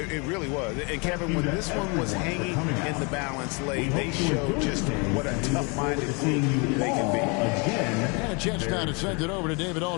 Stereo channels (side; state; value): right; quieter; 31.5 dB